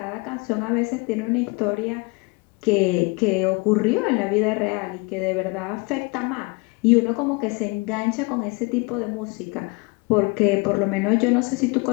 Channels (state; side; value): quieter; right; 27.4 dB